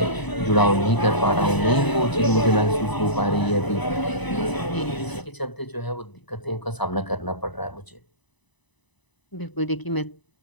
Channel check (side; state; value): right; late; 1.0 ms